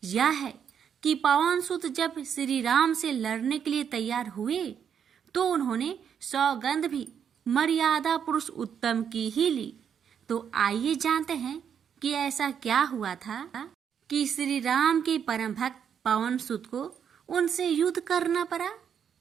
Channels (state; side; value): quieter; left; 7.9 dB